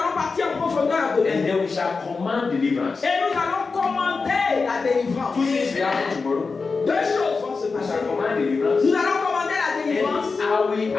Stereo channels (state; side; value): quieter; right; 4.5 dB